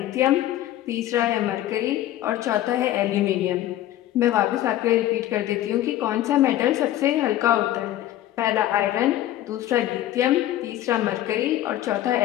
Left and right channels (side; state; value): right; quieter; 13.5 dB